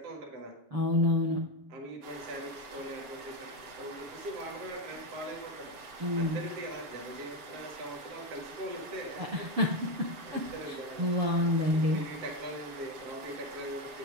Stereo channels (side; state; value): left; late; 7.2 ms